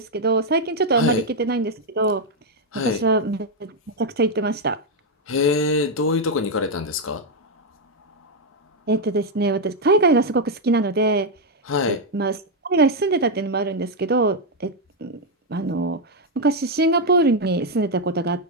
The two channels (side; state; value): both; normal; correlation 0.01